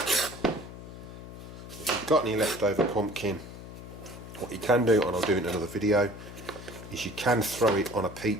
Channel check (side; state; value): left; noise; hum, 13 dB below the sound